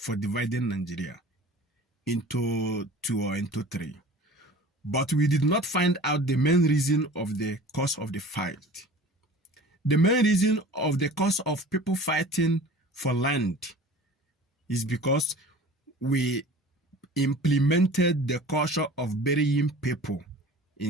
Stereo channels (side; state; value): both; normal; correlation 0.42